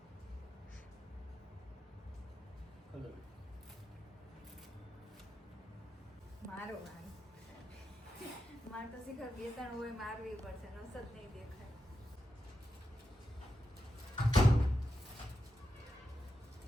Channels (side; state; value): both; normal; correlation 0.88